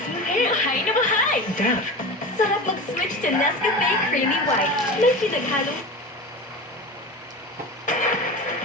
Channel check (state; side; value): normal; both; correlation 0.29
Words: smooth hair. Bahay na bahay! Dove. Sarap mag-switch to Nescafe Creamy White. May pinaghalong